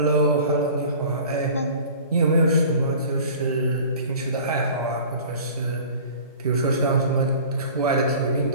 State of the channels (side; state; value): both; inverted; correlation -0.43